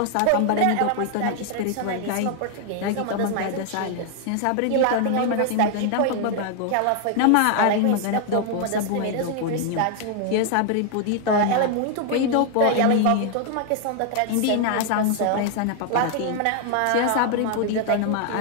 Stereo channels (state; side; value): different; both; correlation 0.00